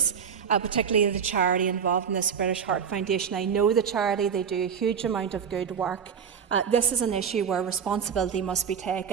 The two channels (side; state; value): left; quieter; 7.1 dB